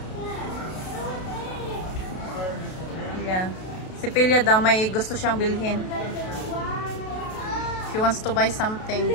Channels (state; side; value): late; right; 32 ms